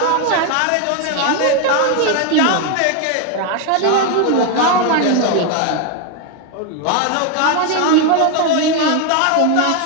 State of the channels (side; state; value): both; different; correlation 0.01